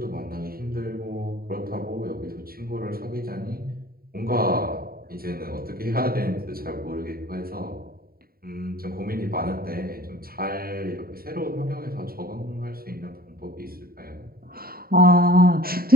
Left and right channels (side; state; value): left; late; 0.43 ms